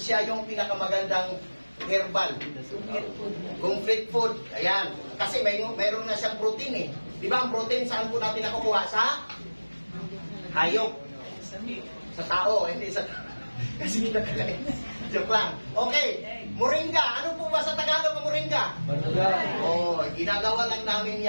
yung pinakamagandang herbal. Complete food. Ayan. Kasi mayroon na siyang protein eh. Di ba ang protein saan po natin nakukuha? Sa hayop. Sa tao, hindi sa kasi kinakain. Joke lang. Okay. Moringa. Ano po ba sa Tagalog ang moringa? Ginagawa lang namin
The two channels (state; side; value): inverted; both; correlation -1.00